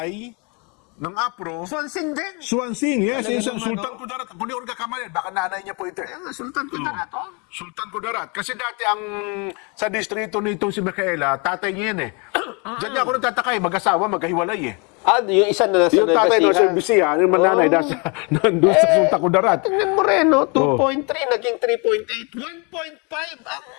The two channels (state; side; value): quieter; right; 32.2 dB